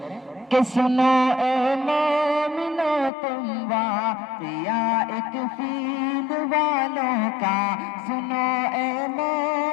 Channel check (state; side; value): drops out; right; at 3.1 s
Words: کہ سنو اے مومنو تم واقعہ ایک فیل والوں کا، سنو اے